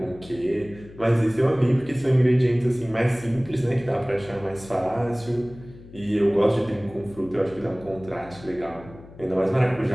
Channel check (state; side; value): noise; left; hum, 19 dB below the sound